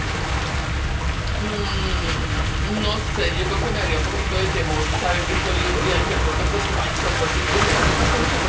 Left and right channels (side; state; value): both; identical; correlation 1.00